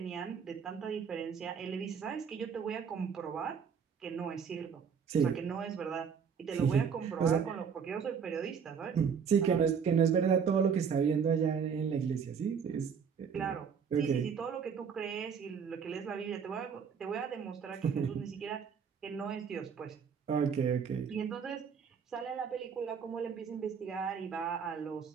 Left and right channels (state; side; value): quieter; left; 6.7 dB